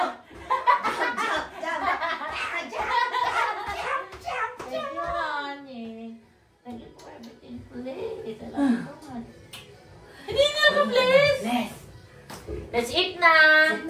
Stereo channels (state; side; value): identical; both; correlation 1.00